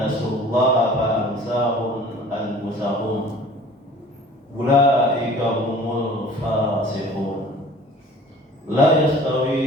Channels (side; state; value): both; normal; correlation 0.47